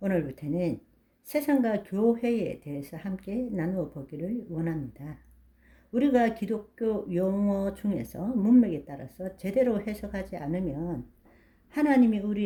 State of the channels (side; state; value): both; identical; correlation 1.00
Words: 세상과 교회에 대해서 함께 나누어 보기를 원합니다. 우리가 기독교 용어 중에서 문맥에 따라서 제대로 해석하지 않으면 하나님이